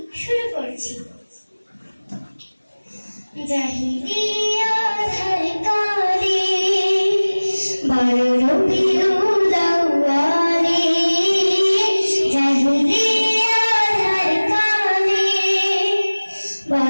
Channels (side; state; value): both; inverted; correlation -1.00